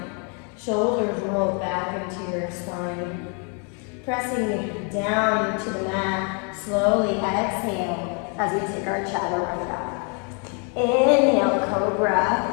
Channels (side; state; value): right; quieter; 38.0 dB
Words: Shoulders roll back into your spine. Pressing down to the mat, slowly exhale as we take our chaturanga. Inhale, cobra